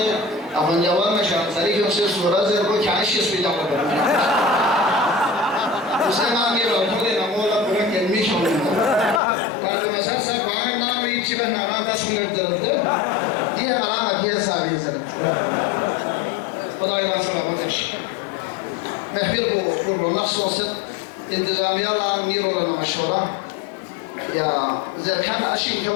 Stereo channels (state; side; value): drops out; right; at 9.2 s